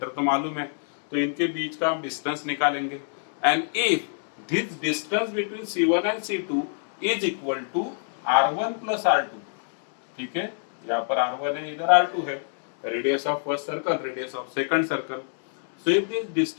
तो मालूम है, तो इनके बीच का हम डिस्टेंस निकालेंगे. And if this distance between C1 and C2 is equal to R1 plus R2, ठीक है, यहाँ पर R1 है, इधर R2 है, radius of first circle, radius of second circle. So if this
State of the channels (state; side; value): silent; right; digital silence